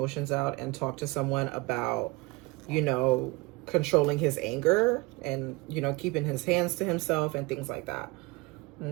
out and talk to someone about, you know, controlling his anger and, you know, keeping his hands to himself and things like that.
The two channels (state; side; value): quieter; left; 24.3 dB